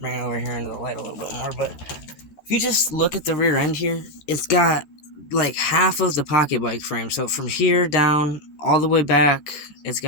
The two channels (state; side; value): late; right; 14 ms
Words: it over here into the light a little bit more. But if you just look at the rear end here, it's got like half of the pocket bike frame. So from here down all the way back, it's